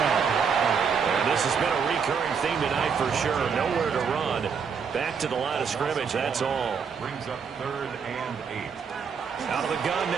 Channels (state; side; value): quieter; left; 6.3 dB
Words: And this has been a recurring theme tonight for sure. Nowhere to run. Back to the line of scrimmage, that's all. Brings up 3rd and 8. Out of the gun